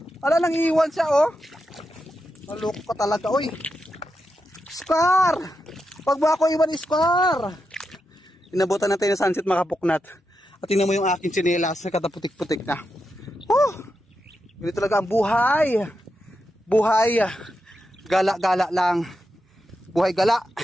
Ala, nang iwan siya oh. Kaloko ka talaga oy. Scar. Pag ba ako iwan Scar. Inabutan natin ng sunset makapuknat. At tingnan mo yung aking tsinelas. Kataputik-putik na. Ganito talaga ang buhay. Buhay. Gala-gala lang. Buhay gala.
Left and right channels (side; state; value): both; normal; correlation 0.86